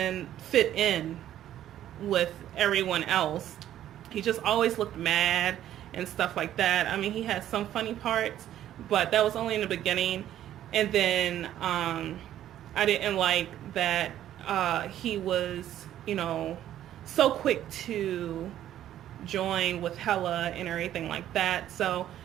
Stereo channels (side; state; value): left; quieter; 11.9 dB